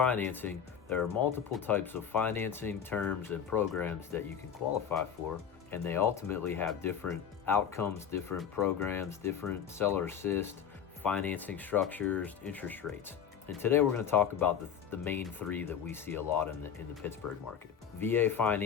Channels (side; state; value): right; quieter; 8.1 dB